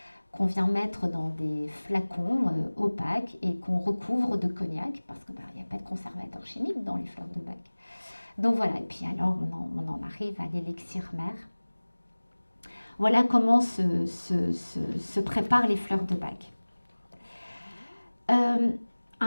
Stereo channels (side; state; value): both; inverted; correlation -1.00